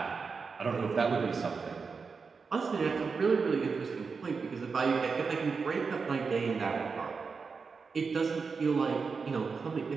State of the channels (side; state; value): left; quieter; 5.0 dB